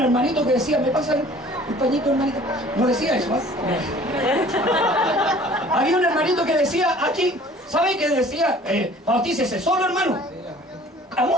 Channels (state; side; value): normal; both; correlation 0.50